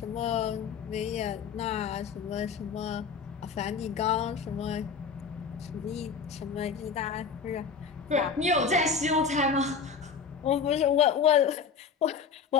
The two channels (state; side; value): quieter; right; 5.8 dB